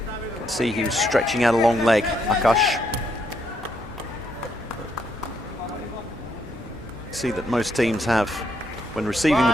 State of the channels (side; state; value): both; normal; correlation 0.75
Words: See, he was stretching out a long leg, Akash. See that most teams have, when receiving the